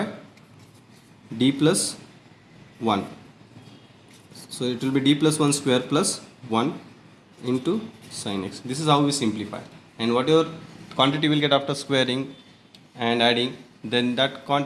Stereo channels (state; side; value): identical; both; correlation 1.00